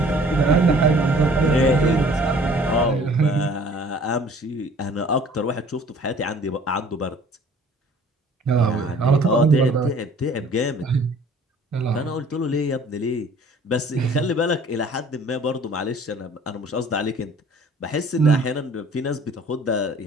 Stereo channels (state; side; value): normal; both; correlation 0.52